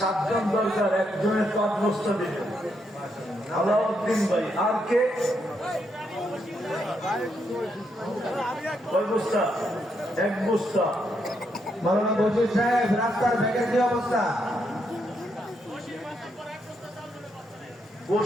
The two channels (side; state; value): both; normal; correlation 0.78